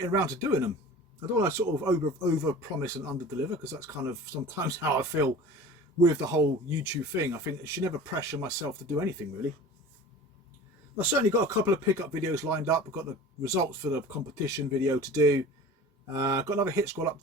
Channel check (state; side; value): normal; both; correlation 0.39